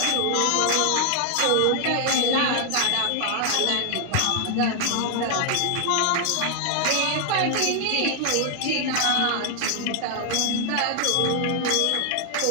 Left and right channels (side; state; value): both; different; correlation 0.00